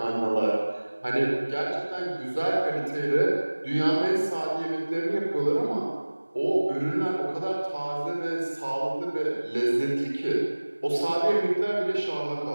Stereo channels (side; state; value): both; inverted; correlation -1.00